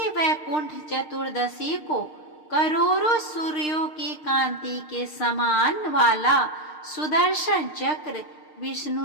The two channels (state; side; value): late; right; 6.6 ms